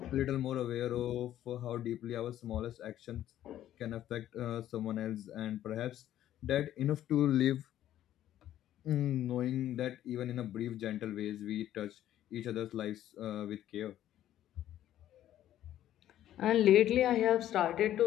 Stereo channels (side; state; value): right; quieter; 12.2 dB